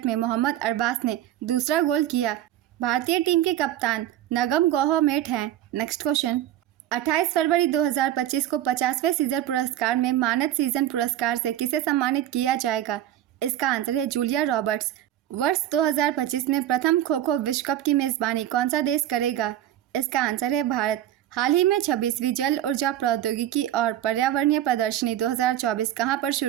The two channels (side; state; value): left; quieter; 12.4 dB